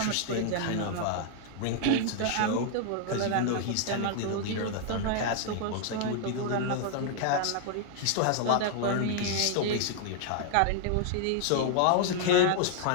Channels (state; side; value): different; both; correlation 0.00